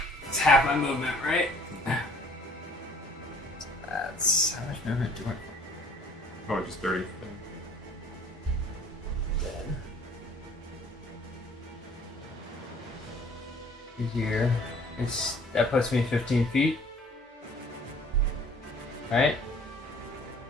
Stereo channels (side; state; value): both; normal; correlation 0.54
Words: It's half my movement, right? That's how much movement do I? Probably just 30. Here, that puts me 15 feet. Right?